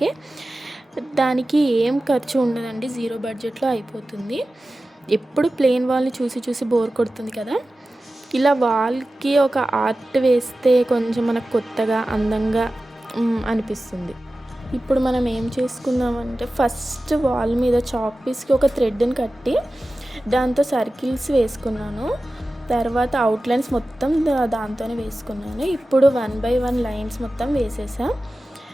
దానికి ఏం ఖర్చు ఉండదండి, 0 బడ్జెట్లో అయిపోతుంది. ఎప్పుడు ప్లెయిన్ వాల్ని చూసి చూసి బోర్ కొడుతుంది కదా, ఇలా వాల్కి ఒక ఆర్ట్ వేస్తే కొంచెం మనకు కొత్తగా అందంగా అనిపిస్తుంది. ఇప్పుడు మనం ఏం చేసుకుందామంటే ఫస్ట్ వాల్ మీద చాక్ పీస్కి ఒక థ్రెడ్ని కట్టి దాంతో సర్కిల్స్ వేసుకున్నాను. తర్వాత అవుట్లైన్స్ మొత్తం దాంతోనే వేసుకున్నాను. ఇప్పుడు 1 by 1 లైన్స్ మొత్తం వేసేసా.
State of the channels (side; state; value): both; normal; correlation 0.95